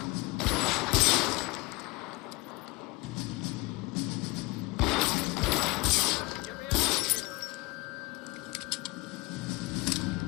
Get me out of here.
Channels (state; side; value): quieter; right; 23.6 dB